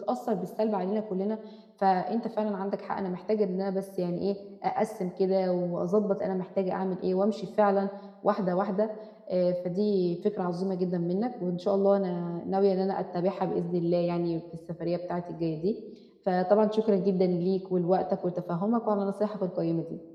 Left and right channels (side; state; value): both; identical; correlation 1.00